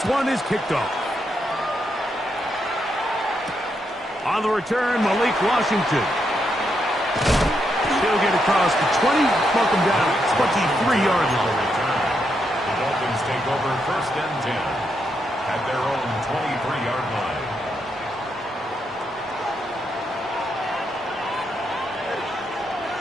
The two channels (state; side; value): normal; both; correlation 0.81